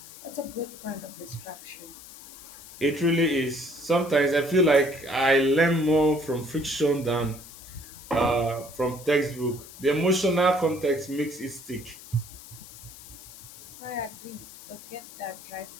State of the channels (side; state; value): left; noise; hiss, 17 dB below the sound